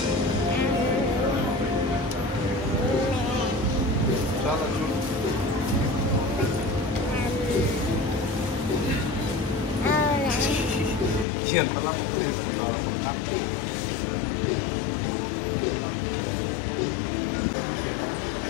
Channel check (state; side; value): drops out; right; at 11.2 s